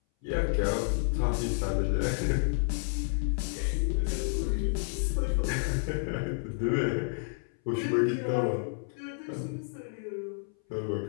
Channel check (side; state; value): right; silent; 58 dB below the other